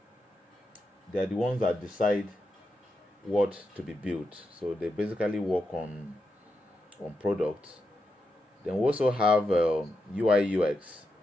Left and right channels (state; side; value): normal; both; correlation 0.86